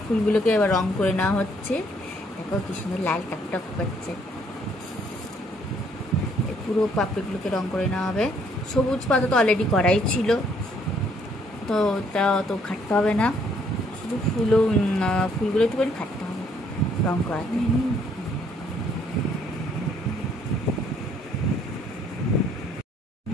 এবার রং করে নেওয়া হচ্ছে। দেখো কি সুন্দর লাল টকটক করছে। পুরো পাপড়িগুলোকে রং করে নেওয়া হবে। সবুজ পাতা তো অলরেডি করাই ছিল, তো ওটা তো খাটতে হবে না, শুধু ফুলগুলো একটুখানি খাটতে হবে রং করাতে।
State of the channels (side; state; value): both; normal; correlation 0.66